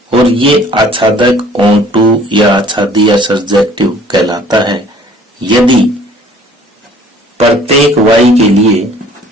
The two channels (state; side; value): normal; both; correlation 0.54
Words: और ये आच्छादक ऑन टू या आच्छादी या सर्जेक्टिव कहलाता है यदि प्रत्येक वाई के लिए